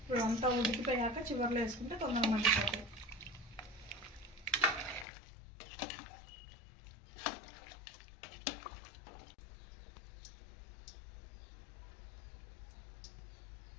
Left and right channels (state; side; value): drops out; right; at 5.1 s